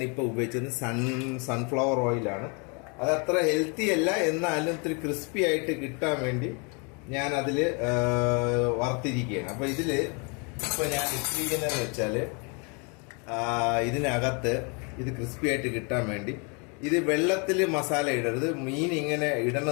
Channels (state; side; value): quieter; right; 33.9 dB